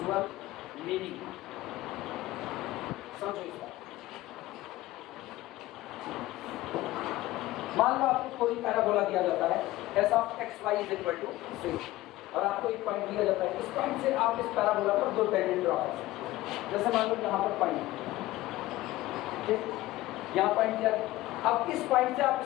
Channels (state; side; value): quieter; right; 17.1 dB